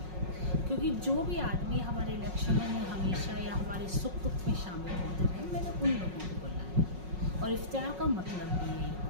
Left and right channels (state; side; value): late; left; 5.5 ms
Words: क्योंकि जो भी आदमी हमारे इलेक्शनों में हमेशा या हमारे सुख दुख में शामिल होते रहे, मैंने उन लोगों को बुलाया। और इफ्तियार का मतलब भी यही